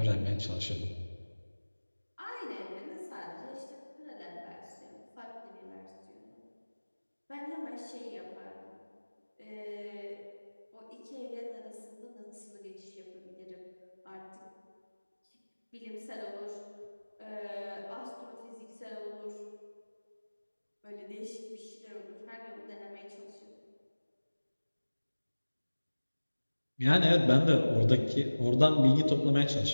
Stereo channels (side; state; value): both; inverted; correlation -1.00